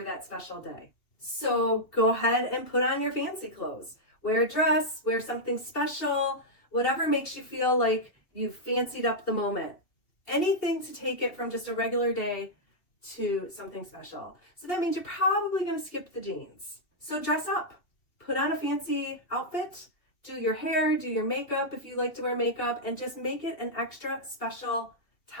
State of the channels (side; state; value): right; late; 2.7 ms